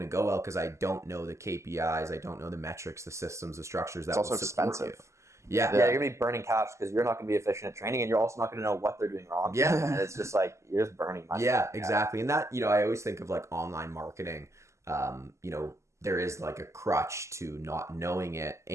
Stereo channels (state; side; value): late; left; 0.14 ms